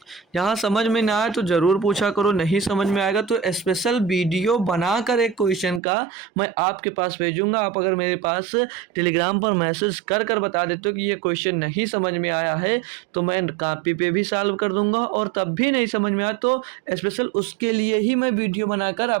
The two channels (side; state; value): left; drops out; at 5.8 s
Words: यहाँ समझ में ना आए तो ज़रूर पूछा करो, नहीं समझ में आएगा तो स्पेशल वीडियो बनाकर एक क्वेश्चन का मैं आपके पास भेजूंगा। आप अगर मेरे पास टेलीग्राम पर मैसेज कर बता देते हो कि ये क्वेश्चन नहीं समझ में आया है तो मैं कॉपी पे भी सॉल्व कर दूंगा, और तब भी नहीं समझ में आया तो स्पेशल उसके लिए ही मैं वीडियो बनाकर